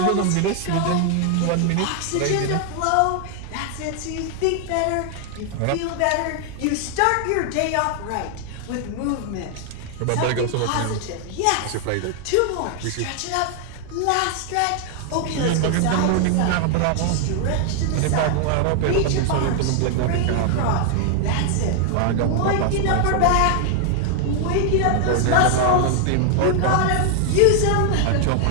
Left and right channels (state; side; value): different; both; correlation 0.00